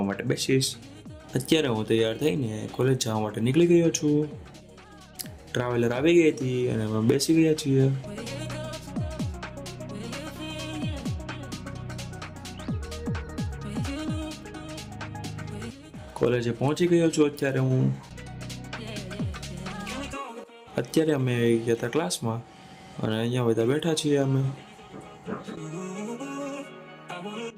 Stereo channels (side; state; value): both; identical; correlation 1.00